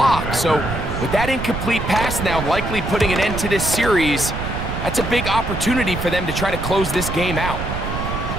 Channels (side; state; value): right; noise; rumble, 5 dB below the sound